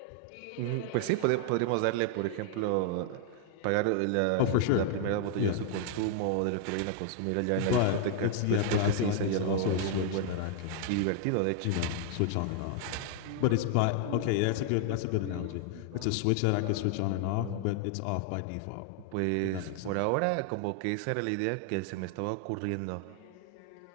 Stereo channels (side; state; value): both; different; correlation 0.00